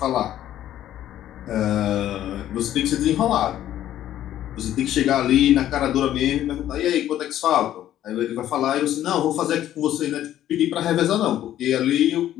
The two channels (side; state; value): right; quieter; 12.2 dB